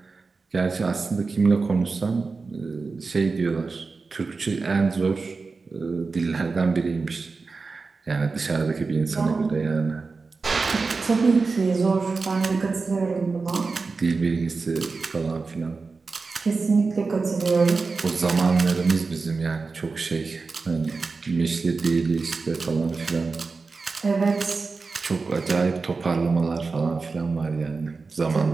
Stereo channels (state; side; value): quieter; left; 4.2 dB